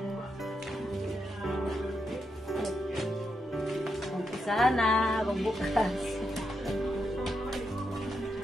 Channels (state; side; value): normal; both; correlation 0.83